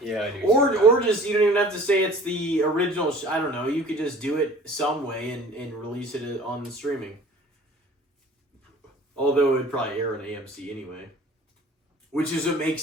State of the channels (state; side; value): normal; both; correlation 0.48